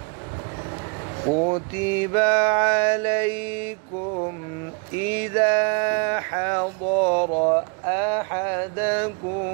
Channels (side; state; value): left; quieter; 35.8 dB